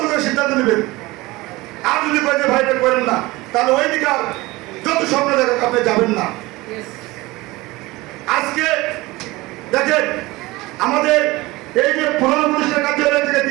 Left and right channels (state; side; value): quieter; left; 20.8 dB